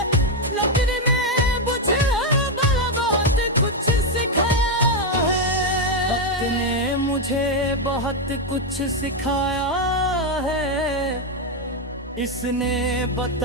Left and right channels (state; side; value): normal; both; correlation 0.04